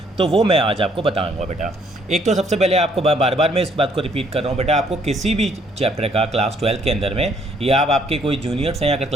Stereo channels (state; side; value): normal; both; correlation 0.65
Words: तो वो मैं आज आपको बताऊंगा बेटा। एक तो सबसे पहले आपको बार बार मैं इस बात को रिपीट कर रहा हूँ बेटा, आपको किसी भी चैप्टर का क्लास 12 के अंदर में या आप आपके कोई जूनियर्स हैं या अगर